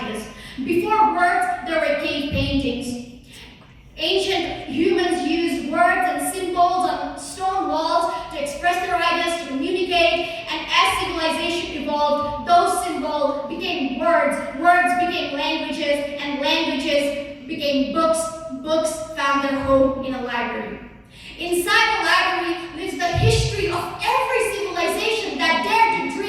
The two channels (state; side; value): identical; both; correlation 1.00